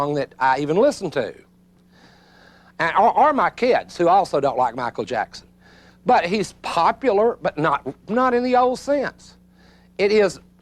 that I even listened to. Or my kids, who also don't like Michael Jackson. But he's popular, but not in the old sense. It is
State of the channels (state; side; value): identical; both; correlation 1.00